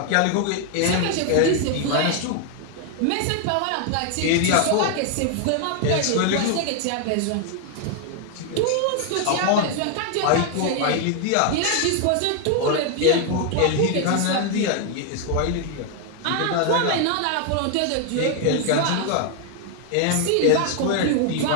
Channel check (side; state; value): both; different; correlation 0.00